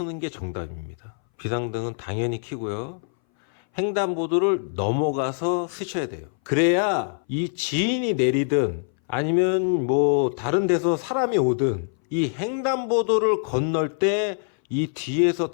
게 정답입니다. 비상등은 당연히 켜고요. 횡단보도를 넘어가서 쓰셔야 돼요. 그래야 이 지인이 내리든 아니면 뭐 다른 데서 사람이 오든 이 횡단보도를 건널 때 이 뒤에서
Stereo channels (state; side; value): silent; right; 60 dB below the other